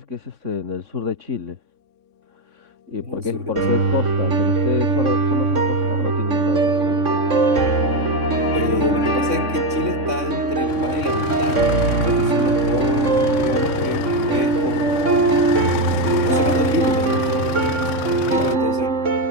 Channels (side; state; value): left; late; 3.6 ms